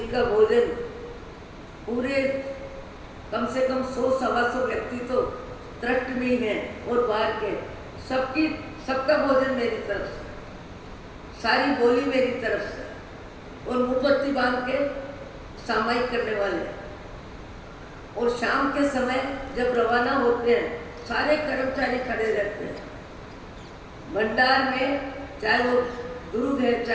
का भोजन पूरे कम से कम 100-125 व्यक्ति तो ट्रस्ट में ही हैं और बाहर के सबका भोजन मेरी तरफ से, सारी बोली मेरी तरफ से, और मोमबत्ती बांध के सामायिक करने वाले। और शाम के समय जब रवाना होते हैं सारे कर्मचारी खड़े रहते हैं भंडार में, चाहे वो दुर्ग है,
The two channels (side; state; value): both; identical; correlation 1.00